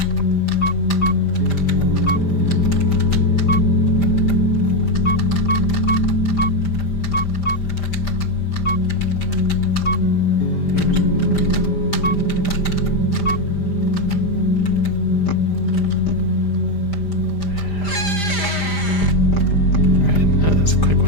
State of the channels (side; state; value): right; late; 5.0 ms